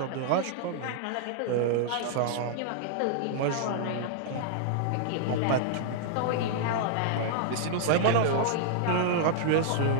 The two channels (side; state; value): both; different; correlation -0.01